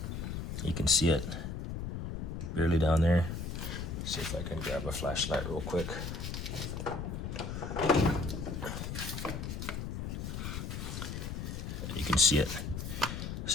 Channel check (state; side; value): noise; left; rumble, 5 dB below the sound